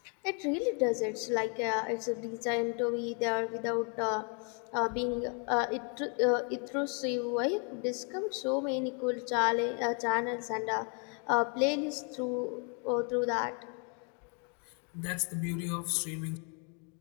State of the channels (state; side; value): quieter; right; 38.8 dB